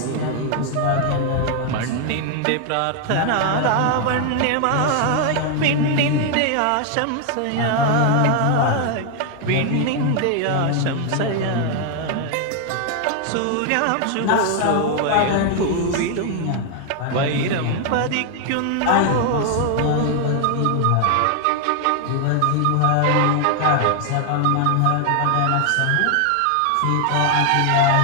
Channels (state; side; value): different; both; correlation 0.00